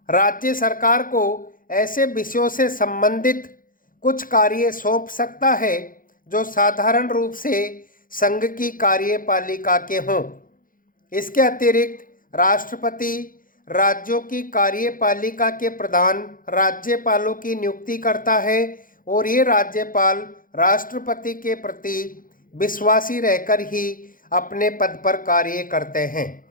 राज्य सरकार को ऐसे विषयों से संबंधित कुछ कार्य सौंप सकता है जो साधारण रूप से संघ की कार्यपालिका के हों। इसके अतिरिक्त राष्ट्रपति राज्यों की कार्यपालिका के प्रधान राज्यपालों की नियुक्ति करता है और ये राज्यपाल राष्ट्रपति के प्रति विश्वासी रहकर ही अपने पद पर कार्य करते हैं।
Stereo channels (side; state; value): right; late; 0.40 ms